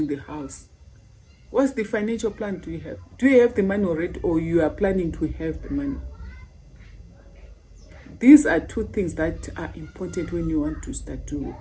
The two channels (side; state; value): both; identical; correlation 1.00